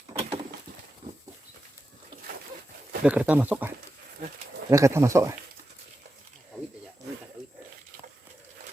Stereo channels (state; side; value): normal; both; correlation 0.90